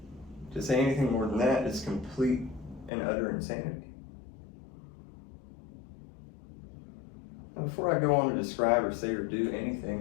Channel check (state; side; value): drops out; right; at 2.9 s